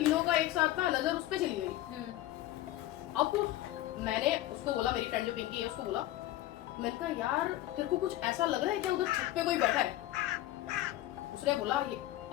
का एक साथ ना नजर उस पर चली गई। अब मैंने उसको बोला, मेरी फ्रेंड जो पिंकी है उसको बोला, मैंने कहा यार तेरे को कुछ ऐसा लग रहा है क्या, उधर छत पे कोई बैठा है? उसने बोला ये।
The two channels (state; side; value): quieter; right; 15.1 dB